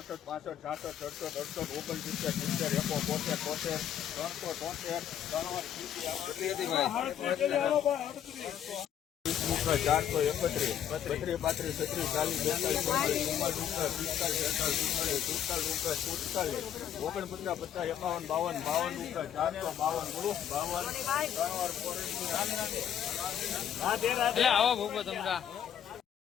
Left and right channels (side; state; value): right; quieter; 9.8 dB